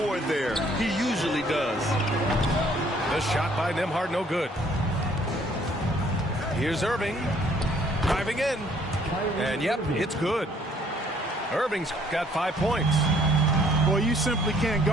there. He usually does. The shot by Nembhard, no good. Here's Irving. Driving in. And, yep, it's good. Irving's got 5 points. Boy, you simply can't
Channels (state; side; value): normal; both; correlation 0.62